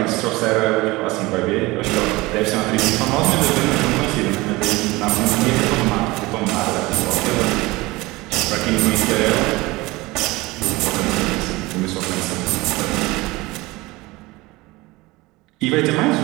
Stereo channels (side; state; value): left; quieter; 21.4 dB